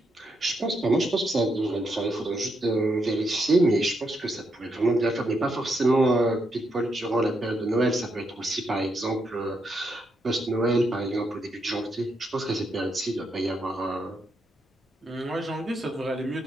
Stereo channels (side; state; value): both; normal; correlation 0.80